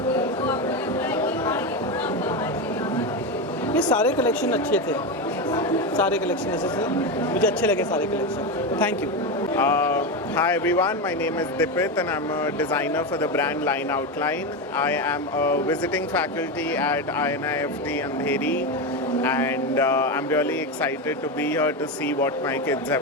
ये सारे कलेक्शन अच्छे थे, सारे कलेक्शन ऐसे थे, मुझे अच्छे लगे सारे collection. Thank you. Hi everyone, my name is Dipit and I'm a designer for the brand Line Outline. I am a visiting faculty at INIFT Andheri, and I'm really excited to be here to see what my kids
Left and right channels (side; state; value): both; normal; correlation 0.15